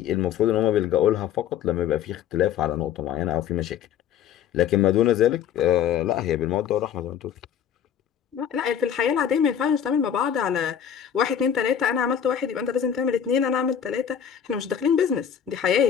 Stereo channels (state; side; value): quieter; right; 8.9 dB